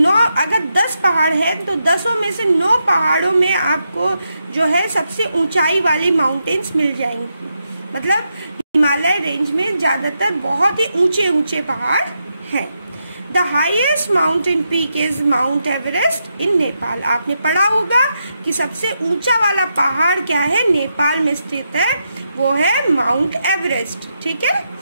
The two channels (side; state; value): both; inverted; correlation -0.83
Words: अगर 10 पहाड़ है तो 10 में से 9 पहाड़ों में आपको जो है सबसे ऊंचाई वाली माउंटेन्स मिल जाएंगी। मतलब हिमालय रेंज में ज्यादातर बहुत ही ऊंचे ऊंचे पहाड़ हैं। The highest mountain peak is Mount Everest in Nepal. आपने पढ़ा होगा कि सबसे ऊंचा वाला पहाड़ क्या है, नेपाल में स्थित है, वो है माउंट एवरेस्ट। ठीक है,